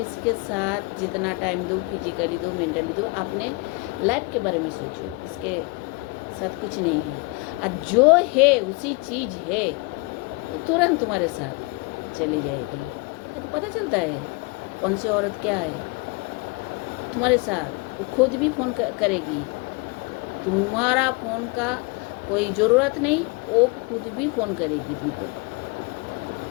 साथ जितना टाइम दो, फिजिकली दो, मेंटली दो, अपने लाइफ के बारे में सोचो, इसके साथ कुछ नहीं है। और जो है उसी चीज़ है तो तुरंत तुम्हारे साथ चली जाएगी। ये तो पता चलता है कौन सी औरत क्या है तुम्हारे साथ। वो खुद भी फ़ोन करेगी, तुम्हारा फ़ोन का कोई ज़रूरत नहीं, वो खुद भी फ़ोन करेगी तुमको।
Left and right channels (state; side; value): quieter; right; 26.7 dB